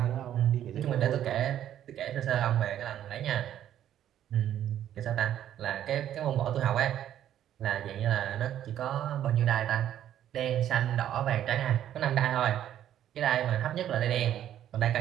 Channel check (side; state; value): left; quieter; 11.1 dB